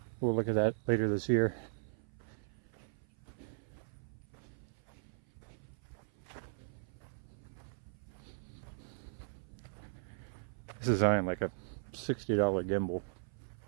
We'll look at that later this year. This is on like a $60 gimbal.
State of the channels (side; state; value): left; silent; 52 dB below the other